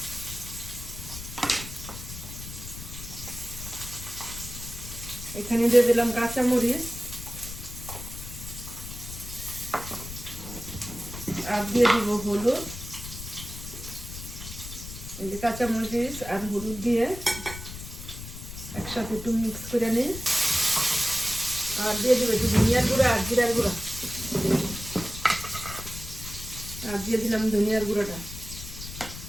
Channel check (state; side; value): noise; left; rumble, 11 dB below the sound